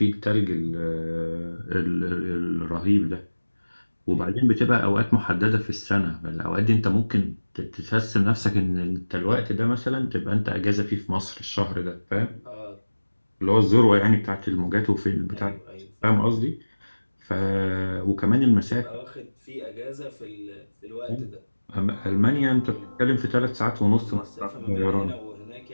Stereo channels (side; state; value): both; inverted; correlation -1.00